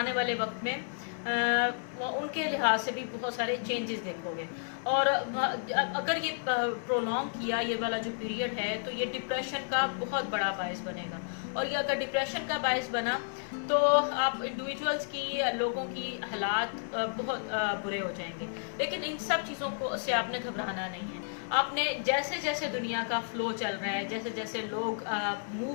والے وقت میں ان کے لحاظ سے بھی بہت سارے چینجز دیکھو گے. اور اگر یہ پرولونگ کیا یہ والا جو پیریڈ ہے تو یہ ڈپریشن کا بہت بڑا باعث بنے گا، اور یہ اگر ڈپریشن کا باعث بنا تو آپ انڈیویجولز کی، لوگوں کی حالات بہت برے ہو جائیں گے. لیکن ان سب چیزوں سے آپ نے گھبرانا نہیں ہے. آپ نے جیسے جیسے دنیا کا فلو چل رہا ہے، جیسے جیسے لوگ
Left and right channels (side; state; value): right; silent; 57 dB below the other